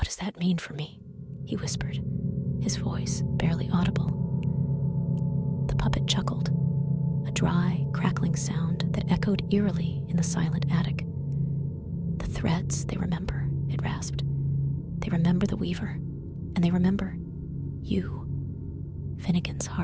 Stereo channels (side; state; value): both; identical; correlation 1.00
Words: does that mean for me?" he whispered, his voice barely audible. The puppet chuckled, a dry, crackling sound that echoed eerily in the silent attic. "The threads, they remember," it rasped. "They remember the weaver, and they remember you." Finnigan's